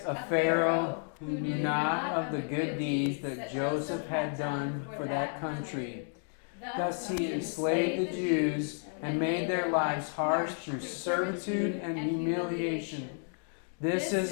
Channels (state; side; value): silent; right; 57 dB below the other